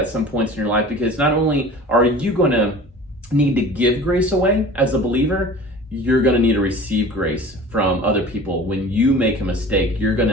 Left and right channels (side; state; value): both; normal; correlation 0.41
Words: some points in your life, because not only are you going to need to give grace away as a believer, you're going to need to receive grace from other people. When you make a mistake, you're going